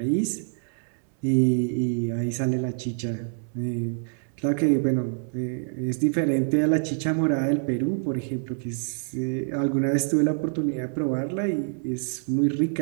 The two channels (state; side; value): silent; left; 61 dB below the other